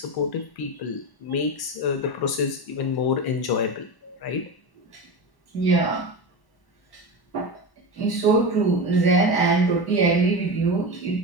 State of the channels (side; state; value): right; late; 1.1 ms